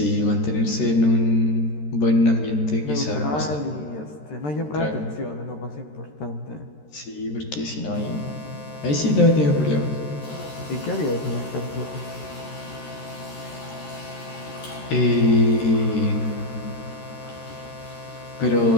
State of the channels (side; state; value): right; late; 13 ms